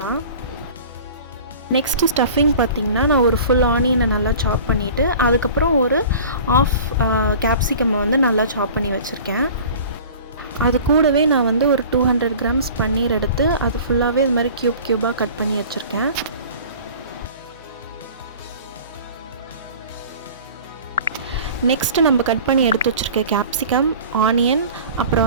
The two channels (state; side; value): inverted; both; correlation -0.43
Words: நெக்ஸ்ட்டு ஸ்டஃபிங் பார்த்திங்கன்னா, நான் ஒரு ஃபுல் ஆனியனை நல்லா சாப் பண்ணிவிட்டு அதுக்கப்புறம் ஒரு ஆஃப் கேப்சிகம்மை நல்லா சாப் பண்ணி வச்சுருக்கேன். அது கூடவே நான் ஒரு 200 கிராம்ஸ் பன்னீர் எடுத்து அது ஃபுல்லாகவே இது மாதிரி க்யூபாக கட் பண்ணி வச்சுருக்கேன். நெக்ஸ்ட்டு நம்ம கட் பண்ணி எடுத்து வச்சுருக்க கேப்சிகம், ஆனியன்,